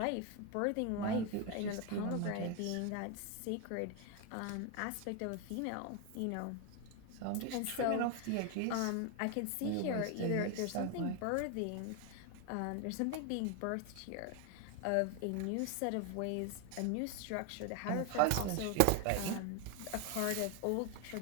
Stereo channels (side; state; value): both; different; correlation 0.01